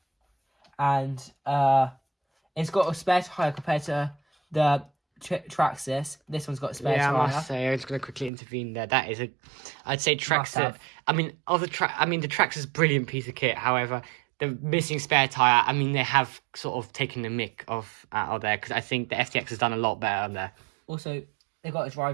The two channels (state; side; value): drops out; left; at 8.3 s